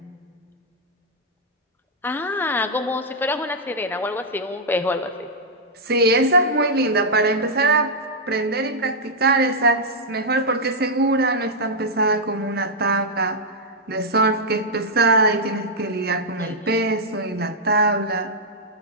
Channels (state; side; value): normal; both; correlation -0.05